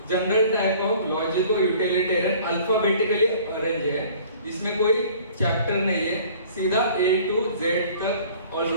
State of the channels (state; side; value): inverted; both; correlation -0.50